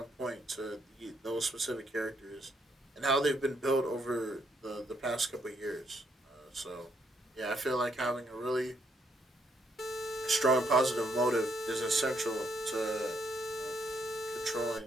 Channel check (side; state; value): both; normal; correlation 0.74